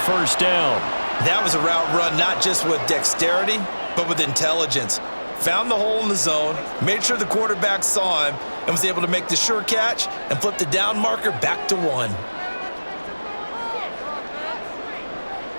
first down. That was a route run not just with dexterity, but with intelligence. Found the hole in the zone, made sure the quarterback saw him, and was able to make the sure catch and flip the down marker back to 1.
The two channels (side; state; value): both; inverted; correlation -1.00